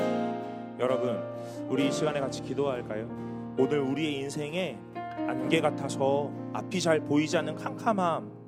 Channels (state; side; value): identical; both; correlation 1.00